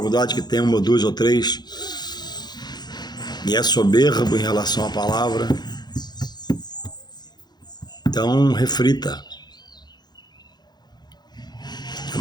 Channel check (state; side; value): late; right; 0.20 ms